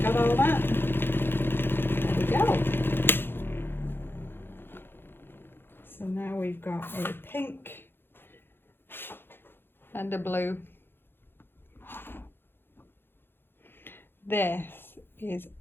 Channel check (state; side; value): late; right; 0.10 ms